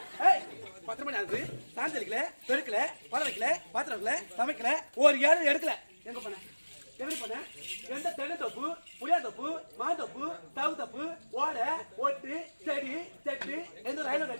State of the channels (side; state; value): both; inverted; correlation -1.00